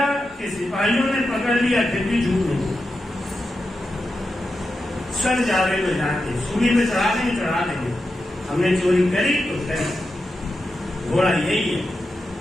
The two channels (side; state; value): both; normal; correlation 0.89